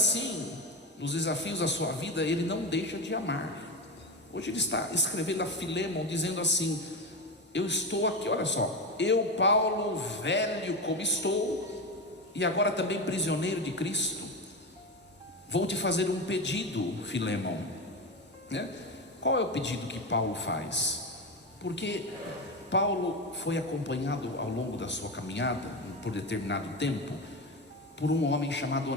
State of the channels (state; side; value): normal; both; correlation 0.18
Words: nos desafios da sua vida, ele não deixa de amar. Hoje ele está escrevendo a Filemon, dizendo assim: eu estou aqui, olha só, eu, Paulo, velho como estou, e agora também prisioneiro de Cristo, vou te fazer um pedido, Filemon, né? Qual é o pedido que Paulo faz? Porque Paulo foi acompanhado ao longo da sua caminhada, por determinado tempo, por um homem chamado